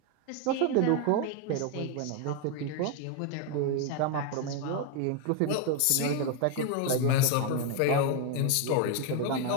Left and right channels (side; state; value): both; different; correlation 0.01